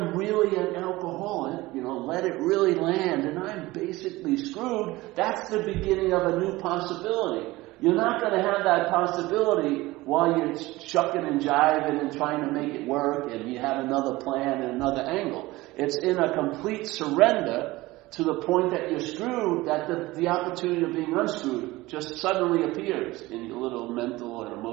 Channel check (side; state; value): left; quieter; 19.5 dB